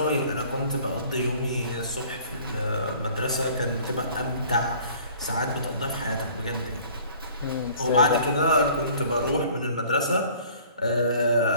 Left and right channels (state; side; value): inverted; both; correlation -0.52